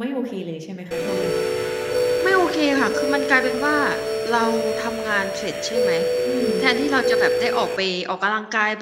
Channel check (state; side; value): identical; both; correlation 1.00